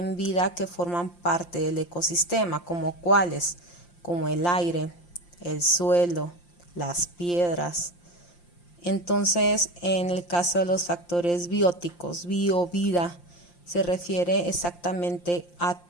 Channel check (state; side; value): late; right; 5.7 ms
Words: vida, que forman parte del ecosistema, como cuáles, como el aire, el suelo, las piedras. Entonces, en el caso de los factores bióticos, vida, se refiere exactamente a